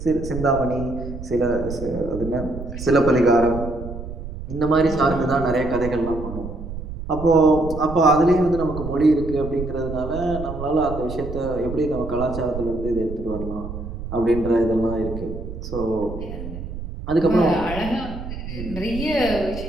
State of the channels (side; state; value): right; noise; rumble, 9 dB below the sound